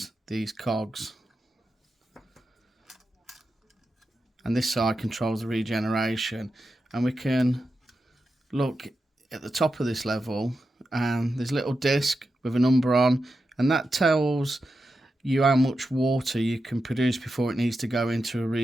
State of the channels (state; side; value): normal; both; correlation 0.89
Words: these cogs, and this side controls the regeneration. And we can look at the top of this level and there's a little disc with a number on, and that tells you how much water you can produce before it needs to go into a